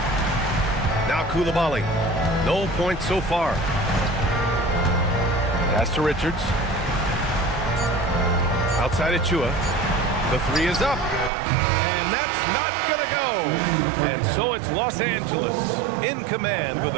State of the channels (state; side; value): drops out; left; at 11.3 s